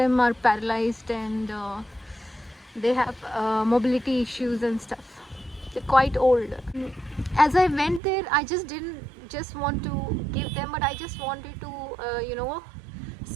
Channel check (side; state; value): left; drops out; at 8.0 s